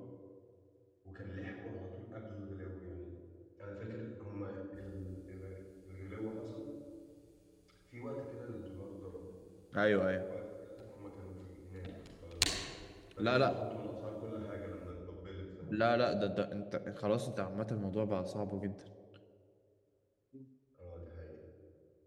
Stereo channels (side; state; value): both; identical; correlation 1.00